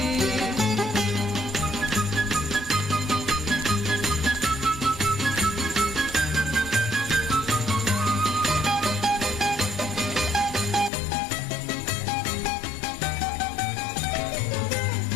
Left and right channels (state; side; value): drops out; right; at 10.9 s